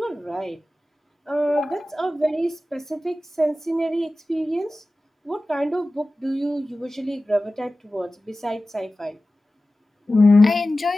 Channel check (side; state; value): both; normal; correlation 0.96